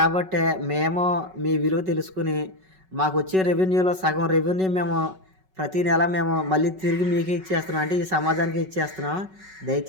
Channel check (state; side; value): late; left; 5.3 ms